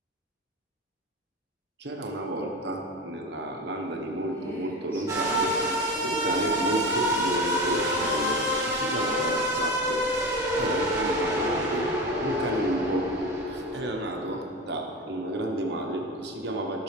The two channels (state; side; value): normal; both; correlation 0.26